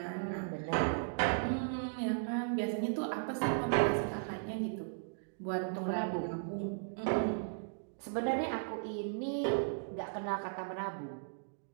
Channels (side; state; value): left; silent; digital silence